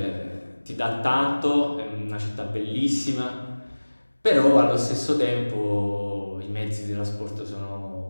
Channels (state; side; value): inverted; both; correlation -1.00